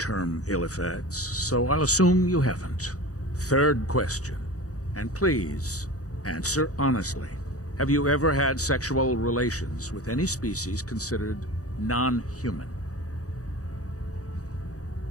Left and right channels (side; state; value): right; late; 0.66 ms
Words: ill effects, so I'll assume you haven't. Third question, and please, answer honestly. Have you ever had sexual relations with any species considered non-human?